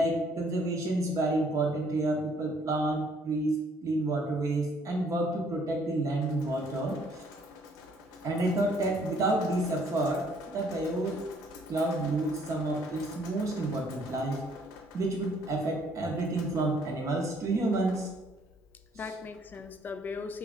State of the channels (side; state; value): both; normal; correlation 0.64